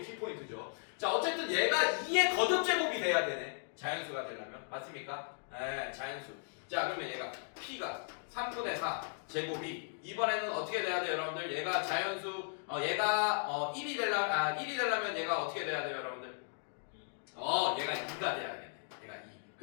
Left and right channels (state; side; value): silent; right; digital silence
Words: 키포인트죠. 자, 어쨌든 얘가 2의 거듭제곱이 돼야 되네. 자연수가 되려면. 맞습니까? 네, 자연수. 자, 그러면 얘가 P가 3분의 4 제곱이 이번에는 어떻게 돼야 돼요, 여러분들? 얘가 자연수, 얘가 1이 되려면 얘가 어떻게 돼야 돼요, 여러분들? 얘가 2가 돼야겠네. 얘가 2.